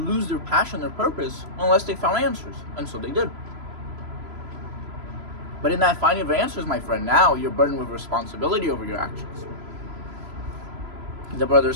lose their passion, their purpose, unless they found answers. And so they did. But in that finding of answers, my friend, now you're burdened with responsibility over your actions. The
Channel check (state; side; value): late; left; 3.0 ms